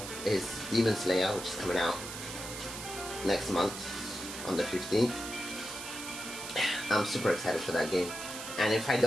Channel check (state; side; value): noise; right; hiss, 9 dB below the sound